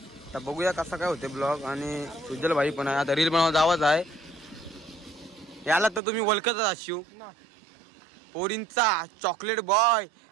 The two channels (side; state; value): left; drops out; at 6.0 s